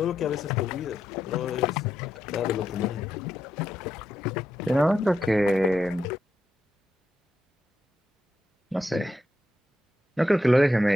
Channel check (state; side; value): normal; both; correlation 0.83